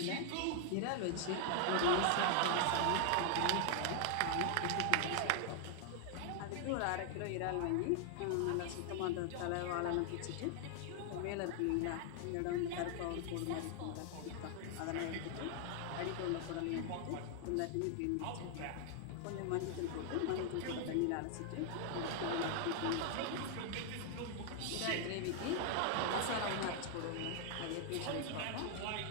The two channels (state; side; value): different; both; correlation 0.00